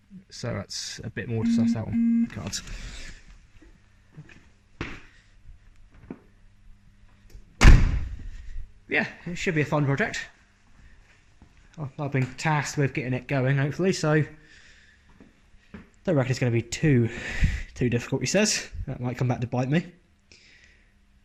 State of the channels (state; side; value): identical; both; correlation 1.00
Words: so that's a bit more to suss out on cards. Yeah, it should be a fun project. I've been tasked with getting it going, hopefully, so don't reckon it's going to be too difficult, he says. That might come back to bite me.